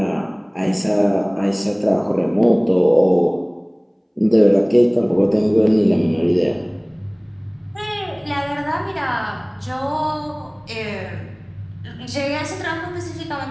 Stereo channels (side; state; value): both; identical; correlation 1.00